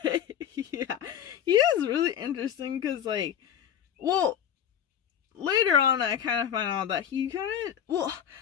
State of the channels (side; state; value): right; quieter; 9.4 dB